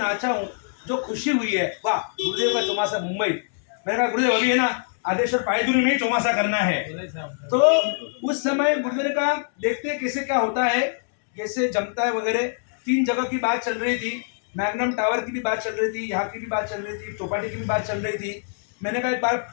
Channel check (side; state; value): right; silent; digital silence